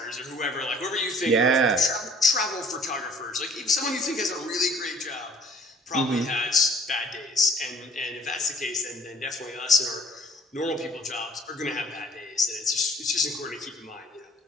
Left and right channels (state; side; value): normal; both; correlation 0.54